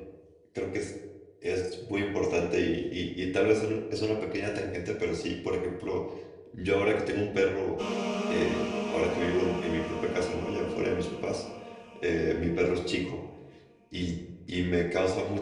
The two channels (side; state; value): both; identical; correlation 1.00